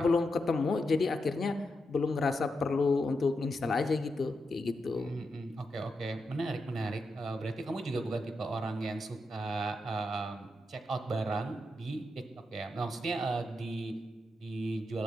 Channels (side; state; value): both; normal; correlation 0.85